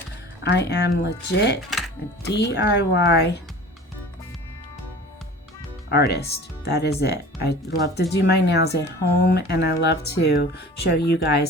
I am legit a DIY artist. That is it. I love to do my nails at home, and I love to show you guys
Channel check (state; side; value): normal; both; correlation 0.41